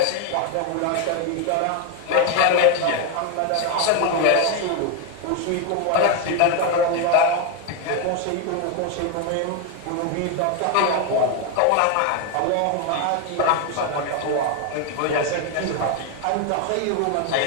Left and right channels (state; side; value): different; both; correlation 0.01